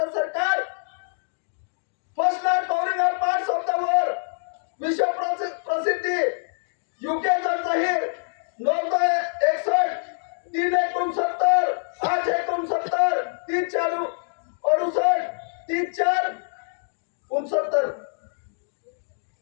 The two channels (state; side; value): silent; right; digital silence